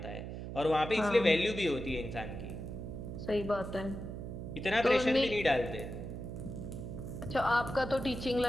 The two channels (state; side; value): noise; right; hum, 7 dB below the sound